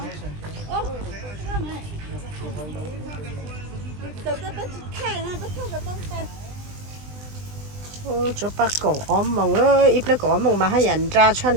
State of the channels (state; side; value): late; left; 20 ms